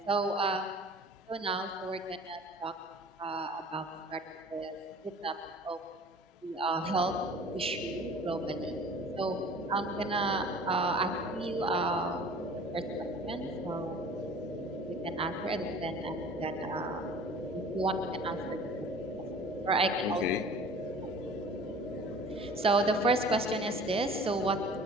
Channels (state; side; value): normal; both; correlation 0.46